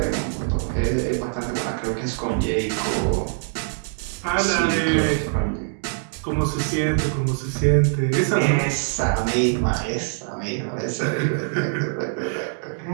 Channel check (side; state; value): left; silent; digital silence